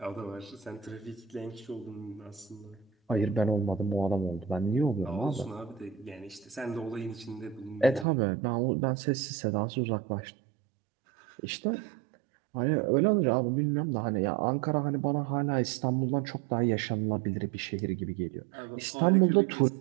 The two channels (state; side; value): drops out; left; at 8.1 s